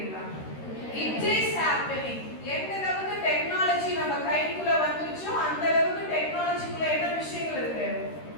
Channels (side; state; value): right; late; 13 ms